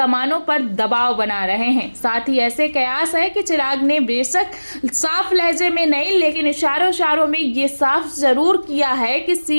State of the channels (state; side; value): inverted; both; correlation -1.00